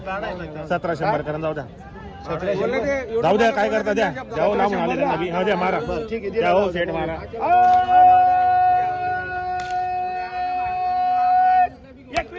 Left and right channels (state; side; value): identical; both; correlation 1.00